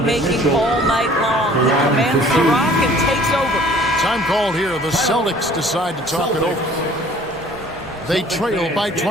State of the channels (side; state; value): both; normal; correlation 0.52